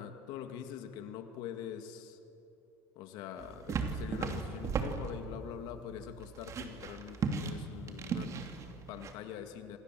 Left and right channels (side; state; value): both; normal; correlation 0.45